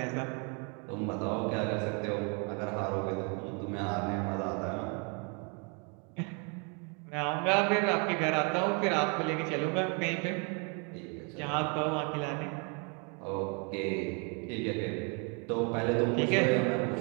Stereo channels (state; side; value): quieter; left; 35.2 dB